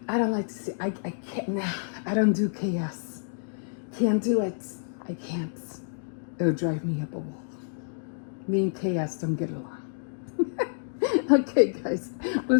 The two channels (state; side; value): silent; right; digital silence